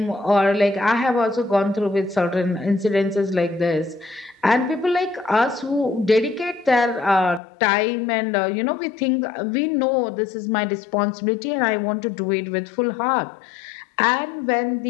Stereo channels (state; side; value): drops out; right; at 7.4 s